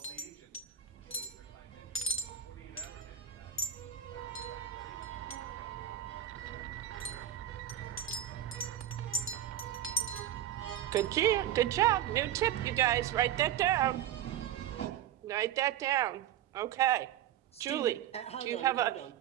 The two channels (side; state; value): left; quieter; 10.8 dB